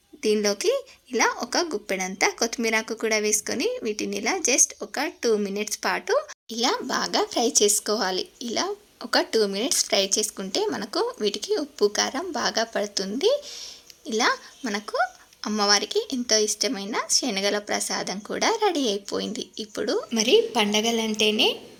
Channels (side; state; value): both; identical; correlation 1.00